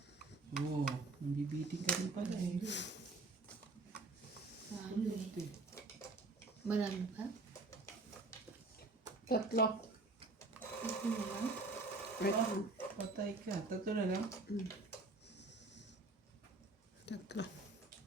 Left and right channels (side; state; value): left; quieter; 3.4 dB